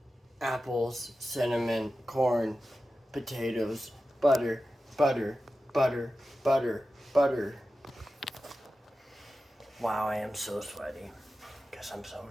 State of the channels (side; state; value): both; normal; correlation 0.93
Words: apples, cinnamon, corn, potatoes, butter, butter, butter, butter, butter. Wow, I am so sweaty because I'm so